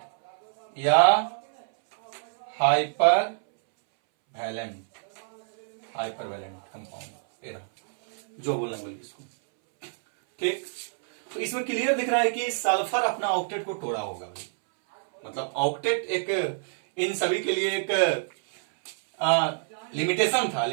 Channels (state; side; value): silent; left; 60 dB below the other